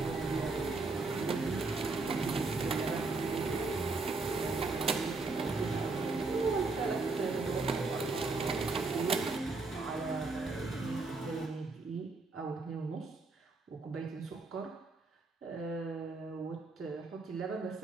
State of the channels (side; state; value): left; quieter; 3.7 dB